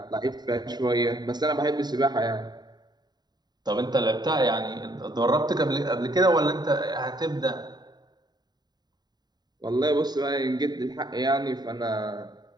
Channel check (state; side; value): late; left; 0.20 ms